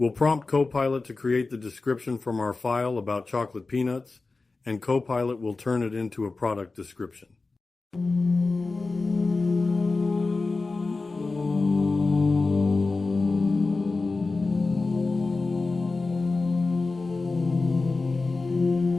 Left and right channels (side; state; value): right; quieter; 3.7 dB